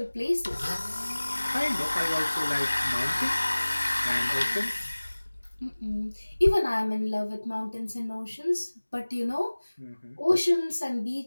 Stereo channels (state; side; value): inverted; both; correlation -1.00